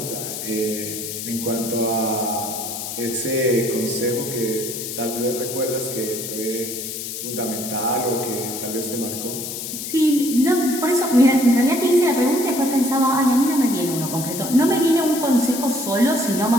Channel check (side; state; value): left; noise; hiss, 7 dB below the sound